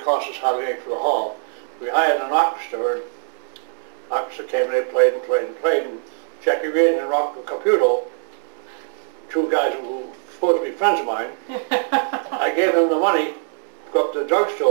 cost us hardly anything for the hall. We hired an orchestra, and the orchestra came and they played and played and played, and Jackie Reardon and Rocco Caputo, two guys who were supposed to be friends of mine, I gave them the money to go up to the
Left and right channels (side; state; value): left; silent; digital silence